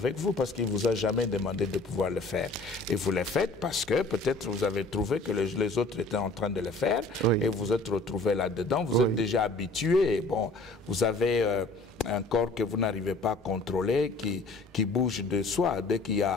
vous parce qu'il ne vous a jamais demandé de pouvoir le faire. Et vous le faites parce que peut-être vous avez trouvé que les autres étaient en train de le faire et vous vous êtes retrouvé là-dedans. Vous êtes déjà habitué. Bon, vous avez... un corps que vous n'arrivez pas à contrôler, qui bouge de soi, dès qu'il y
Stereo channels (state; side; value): quieter; right; 3.1 dB